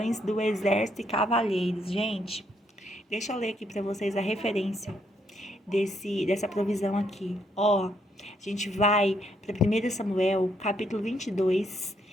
do exército e cavalheiros. Gente, deixa eu ler aqui para vocês a referência dessa provisão aqui. Ó, a gente vai para 1 Samuel, capítulo 22,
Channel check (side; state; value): both; normal; correlation 0.73